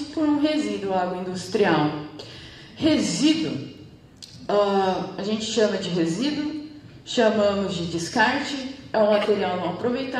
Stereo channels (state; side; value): identical; both; correlation 1.00